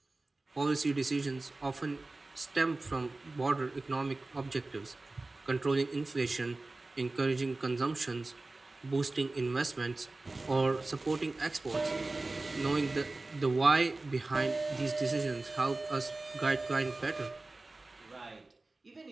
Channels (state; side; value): quieter; left; 3.2 dB